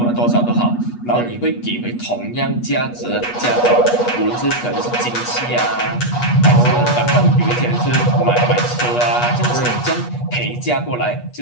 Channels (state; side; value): late; right; 8.3 ms